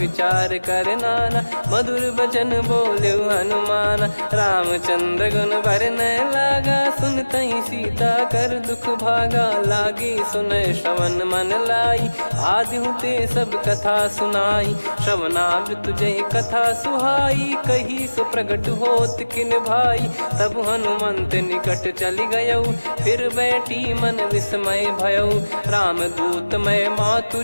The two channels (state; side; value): inverted; both; correlation -1.00